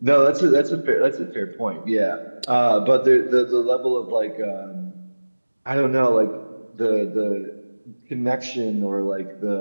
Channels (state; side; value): inverted; both; correlation -1.00